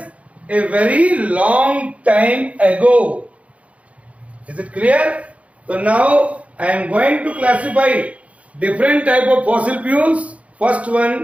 a very long time ago. Is it clear? So now I am going to classify different type of fossil fuels. First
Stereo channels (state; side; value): late; left; 0.065 ms